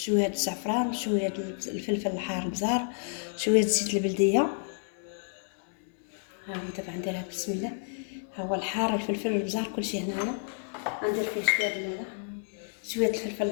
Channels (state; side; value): silent; right; 58 dB below the other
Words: الزعفران، شويه الفلفل الحار البزار، شويه زيت البلديه. ها هو دابا غنديرها بسم الله. ها هو الحار، الفلفل البزار، كلشي هنايا. غندير فيه شويه الفلفل